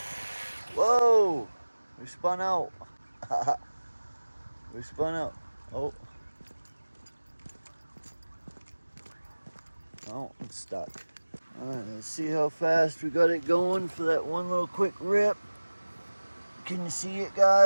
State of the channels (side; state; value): both; inverted; correlation -1.00